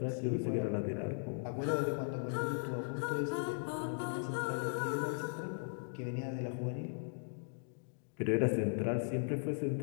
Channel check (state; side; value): silent; right; digital silence